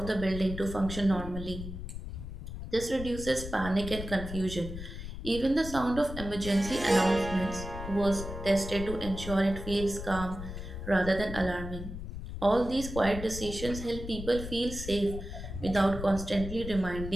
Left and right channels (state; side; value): noise; left; rumble, 8 dB below the sound